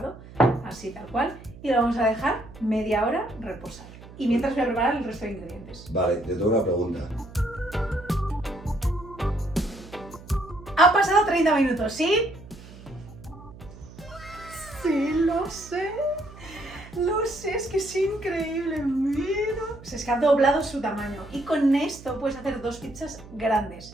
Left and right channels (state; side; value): noise; right; hum, 18 dB below the sound